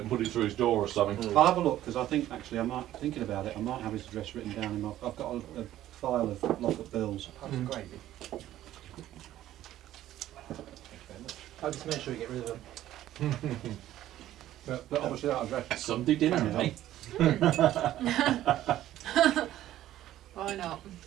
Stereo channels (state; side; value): quieter; left; 13.3 dB